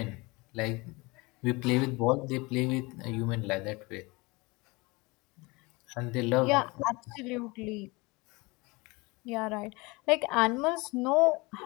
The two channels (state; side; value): quieter; right; 24.9 dB